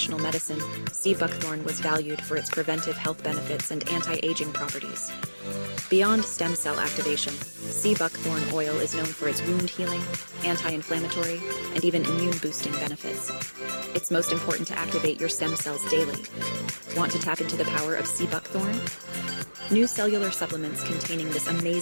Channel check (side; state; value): both; inverted; correlation -1.00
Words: medicine, sea buckthorn was valued for its preventive health benefits and anti-aging properties. Beyond stem cell activation, sea buckthorn oil is known for its wound healing, anti-inflammatory, and even immune-boosting benefits. It's most important to activate your stem cells daily. Want to tap into the power of sea buckthorn? New cellular supplements containing this